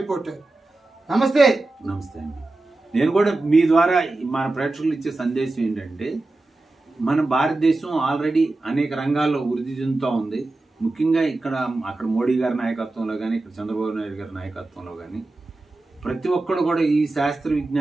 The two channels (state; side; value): quieter; left; 3.0 dB